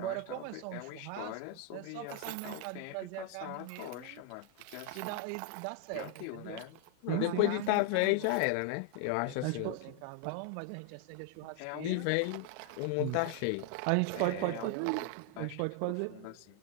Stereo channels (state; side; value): different; both; correlation 0.00